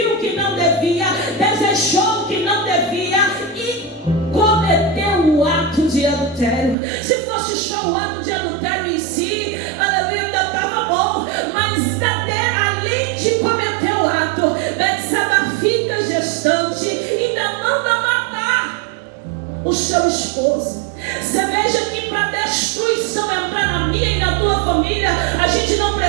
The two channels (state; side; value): drops out; left; at 6.8 s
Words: que não devia, desejou que não devia e cometeu o ato de adultério. Se fosse só o ato de adultério em si, aleluia, ainda estava bom. Mas além de cometer o ato, Betsabá fica gestante e ainda manda matar o seu esposo. Você veja que para destruição entrar na minha e na tua família, a gente não